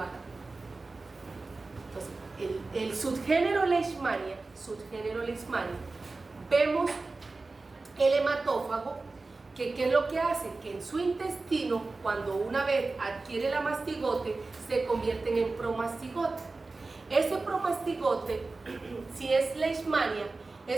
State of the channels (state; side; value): quieter; left; 3.6 dB